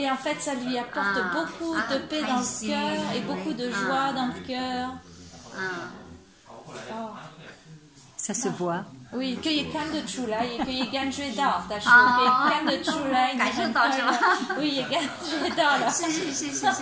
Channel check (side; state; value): both; identical; correlation 1.00